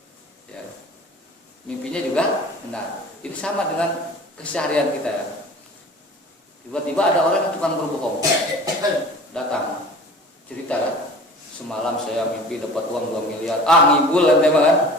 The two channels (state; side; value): normal; both; correlation 0.42